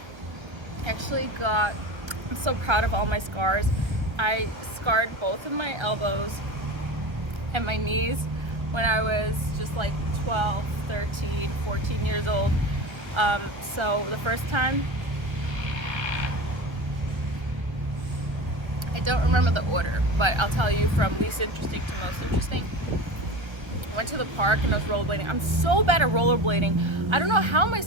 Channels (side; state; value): left; late; 1.3 ms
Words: so proud of all my scars. I scarred both of my elbows and my knees when I was just like 12, 13, 14 years old. So the first time, I don't remember the order, but I'll tell you from least interesting to most interesting. I went to the park and I was rollerblading. I'm so bad at rollerblading. I don't know how my